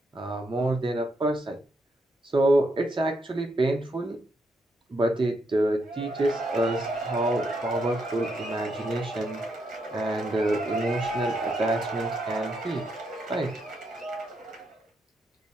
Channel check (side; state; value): both; normal; correlation 0.78